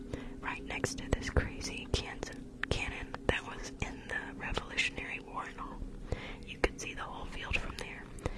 right next to this crazy cannon that was in the Revolutionary War and all. You could see the whole field from there,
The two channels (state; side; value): identical; both; correlation 1.00